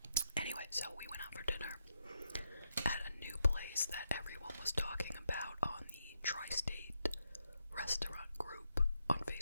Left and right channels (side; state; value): both; inverted; correlation -0.82